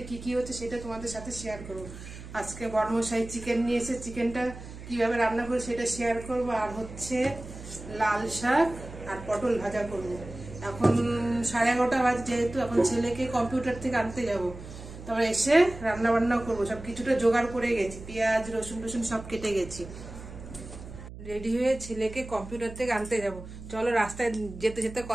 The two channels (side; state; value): right; noise; hum, 13 dB below the sound